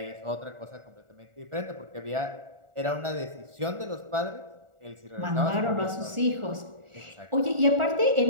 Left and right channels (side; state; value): left; late; 1.4 ms